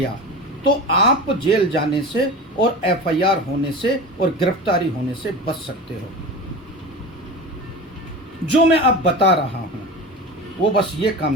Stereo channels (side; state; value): both; normal; correlation 0.30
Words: तो आप जेल जाने से और एफआईआर होने से और गिरफ्तारी होने से बच सकते हो। जो मैं अब बता रहा हूं वो बस ये काम